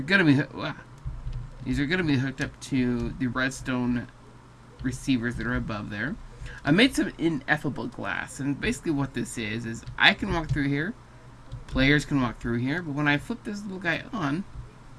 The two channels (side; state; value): both; identical; correlation 1.00